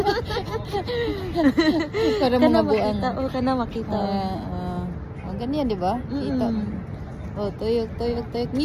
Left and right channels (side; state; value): both; identical; correlation 1.00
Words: Para mga buang. O, kana makita. Ganyan, di ba? Kita mo. Oh, tuyok, tuyok, tuyok.